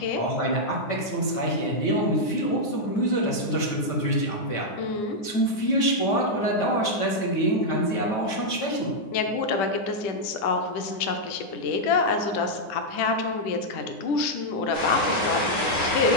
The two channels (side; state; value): right; late; 9.7 ms